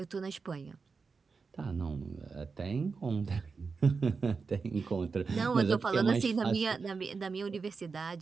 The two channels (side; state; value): left; quieter; 4.8 dB